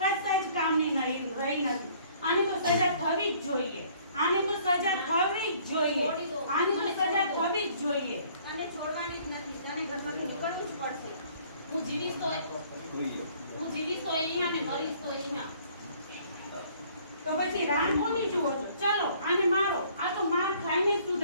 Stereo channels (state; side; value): inverted; both; correlation -0.58